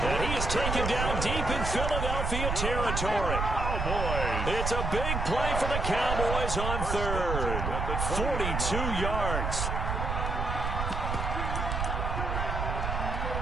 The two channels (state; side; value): noise; right; rumble, 1 dB below the sound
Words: And he is taken down deep in Philadelphia territory. It's a big play for the Cowboys on third. 42 yards.